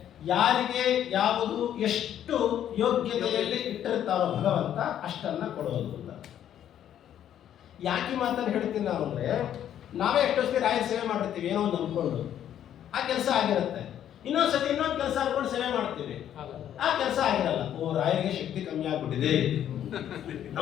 ಯಾರಿಗೆ ಯಾವುದು ಎಷ್ಟು ಯೋಗ್ಯತೆಯಲ್ಲಿ ಇಟ್ಟಿರ್ತಾರೋ ಭಗವಂತ ಅಷ್ಟನ್ನ ಕೊಡೋದು ಅಂತ. ಯಾಕೆ ಮಾತನ್ನು ಹೇಳ್ತೀನಿ ನಾವು ಅಂದ್ರೆ, ನಾವೇ ಎಷ್ಟೊತ್ತಿಗೆ ರಾಯರ ಸೇವೆ ಮಾಡಿರ್ತೀವಿ ಏನೋ ಒಂದು ಅಂದ್ಕೊಂಡು. ಆ ಕೆಲಸ ಆಗಿರುತ್ತೆ. ಇನ್ನೊಂದ್ಸತಿ ಇನ್ನೊಂದು ಕೆಲಸ ಅನ್ಕೊಂಡು ಸೇವೆ ಮಾಡ್ತೀವಿ, ಆ ಕೆಲಸ ಆಗಿರಲ್ಲ. ಓ, ರಾಯರಿಗೆ ಶಕ್ತಿ ಕಮ್ಮಿ ಆಗ್ಬಿಟ್ಟಿದೆ,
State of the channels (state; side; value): quieter; right; 10.5 dB